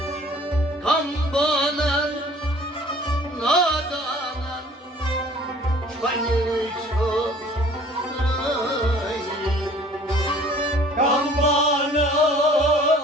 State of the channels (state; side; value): normal; both; correlation 0.51